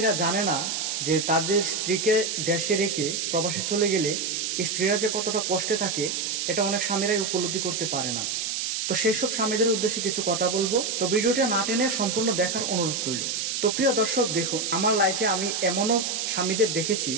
জানে না যে তাদের স্ত্রীকে দেশে রেখে প্রবাসে চলে গেলে স্ত্রীরা যে কতটা কষ্টে থাকে এটা অনেক স্বামীরাই উপলব্ধি করতে পারে না। তো সেই সব স্বামীদের উদ্দেশ্যে কিছু কথা বলবো। তো ভিডিওটা না টেনে সম্পূর্ণ দেখার অনুরোধ রইল। তো প্রিয় দর্শক, দেখুন, আমার লাইফে আমি এমনও স্বামীদের দেখেছি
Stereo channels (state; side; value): noise; right; hiss, 2 dB below the sound